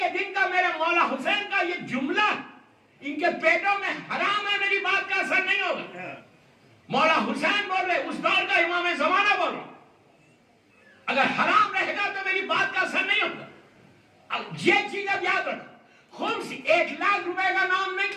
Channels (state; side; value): identical; both; correlation 1.00